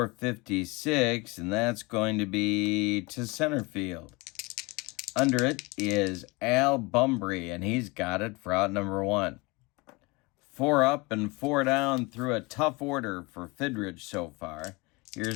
and that's going to be to center field. Under it is Al Bumbry, and he's got it for out number 1. 4 up and 4 down through a tough order for Fidrych so far.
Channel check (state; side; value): quieter; right; 25.6 dB